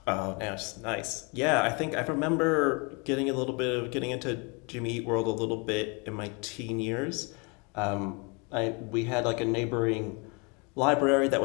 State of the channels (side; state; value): right; quieter; 31.4 dB